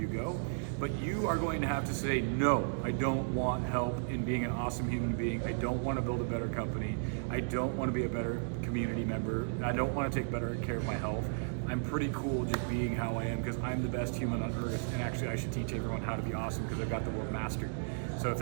go, but you are going to have to say, no, I don't want help in being an awesome human being. I don't want to build a better company. I don't want to be a better community member. I don't want to take better care of my health. I'm pretty cool just being how I am because I'm the best human on earth, and actually I should teach everyone how to be awesome because I've got the world mastered. So if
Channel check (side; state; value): left; silent; digital silence